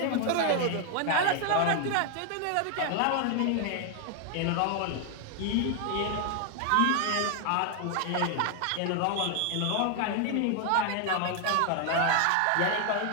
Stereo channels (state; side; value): different; both; correlation 0.00